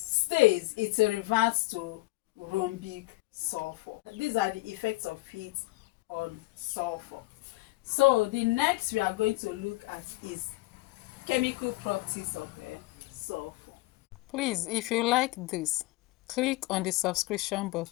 it reverts to rhombic sulfur. These are the effects of heat on sulfur. So the next we are going to look at is chemical properties of sulfur. Please, if you like this, click on the subscription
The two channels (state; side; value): quieter; right; 20.8 dB